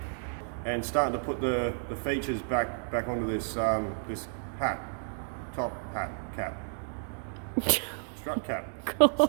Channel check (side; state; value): left; silent; digital silence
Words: and starting to put the features back onto this this hat, top hat cap, strut cap,